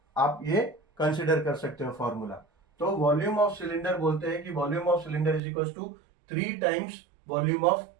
आप ये कंसिडर कर सकते हो फॉर्मूला। तो वॉल्यूम ऑफ सिलेंडर बोलते हैं कि volume of cylinder is equals to 3 times volume of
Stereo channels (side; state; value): left; drops out; at 5.4 s